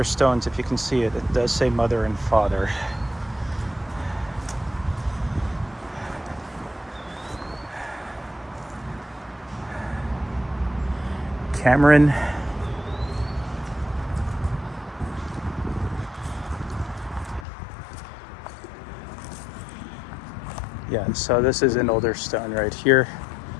stones, if you can see it, it does say mother and father. Cameron. Yeah, so this is an older stone right here.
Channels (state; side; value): drops out; right; at 17.4 s